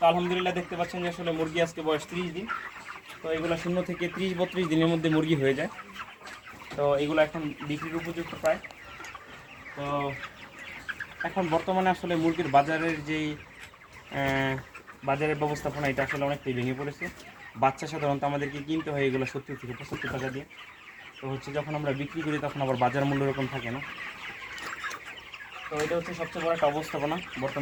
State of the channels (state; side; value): identical; both; correlation 1.00